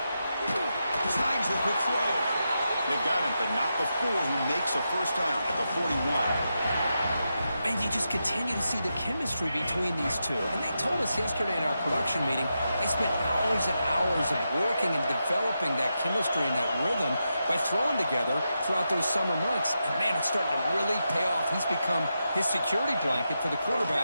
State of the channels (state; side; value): inverted; both; correlation -0.87